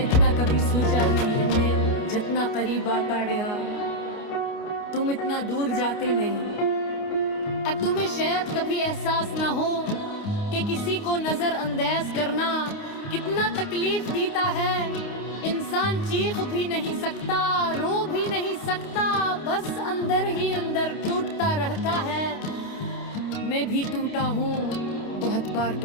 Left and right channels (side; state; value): right; late; 29 ms